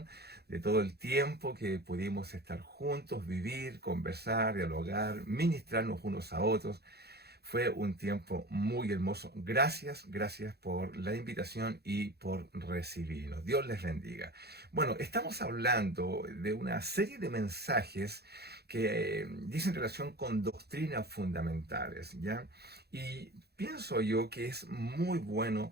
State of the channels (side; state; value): left; late; 0.47 ms